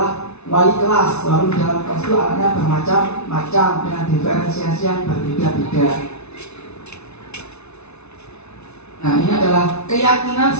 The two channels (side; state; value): right; late; 0.81 ms